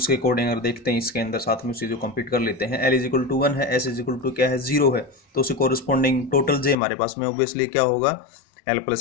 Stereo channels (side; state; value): right; drops out; at 6.8 s